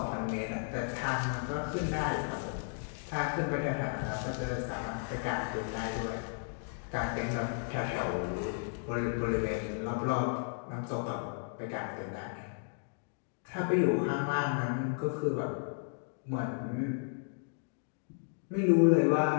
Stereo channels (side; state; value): right; silent; digital silence